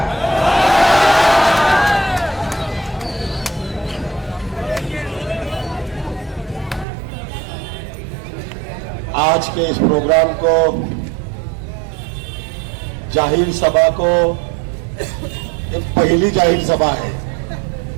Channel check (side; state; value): left; drops out; at 6.9 s